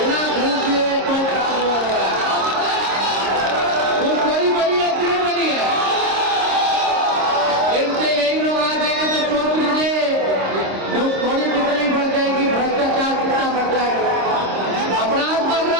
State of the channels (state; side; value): late; left; 26 ms